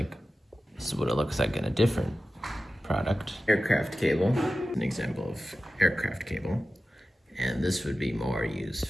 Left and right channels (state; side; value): normal; both; correlation 0.94